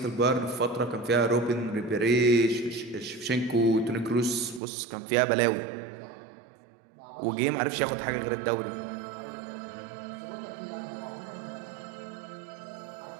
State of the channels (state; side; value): drops out; left; at 4.6 s